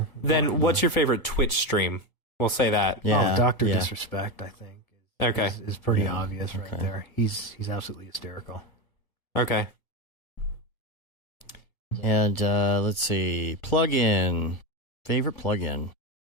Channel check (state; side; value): late; right; 1.4 ms